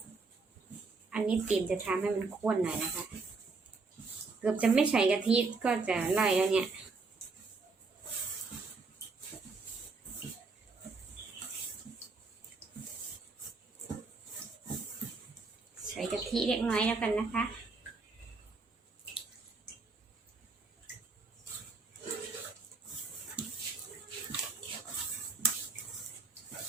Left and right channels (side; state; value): left; quieter; 4.2 dB